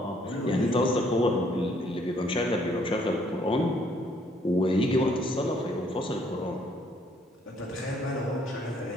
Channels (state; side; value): normal; both; correlation 0.66